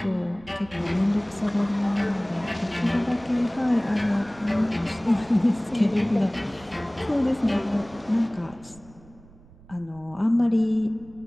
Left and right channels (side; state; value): right; noise; rumble, 24 dB below the sound